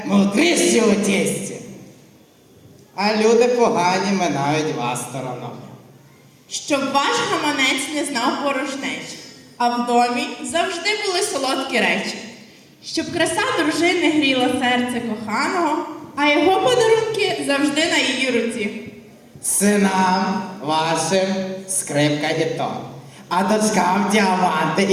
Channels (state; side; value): identical; both; correlation 1.00